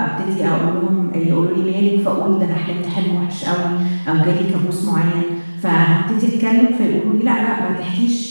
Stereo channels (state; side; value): inverted; both; correlation -1.00